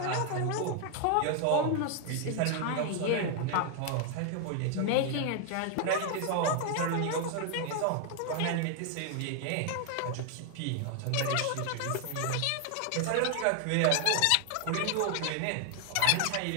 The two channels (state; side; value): different; both; correlation 0.00